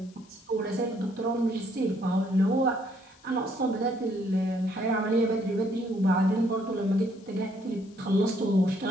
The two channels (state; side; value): noise; left; hiss, 29 dB below the sound